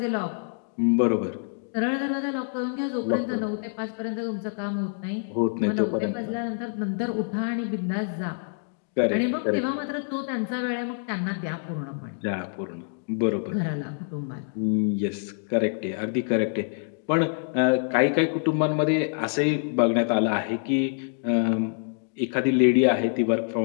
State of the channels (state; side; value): silent; right; digital silence